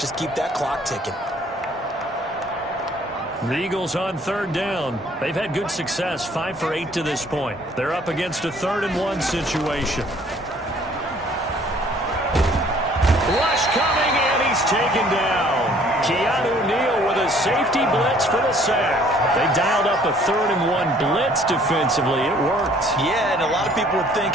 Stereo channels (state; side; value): normal; both; correlation 0.58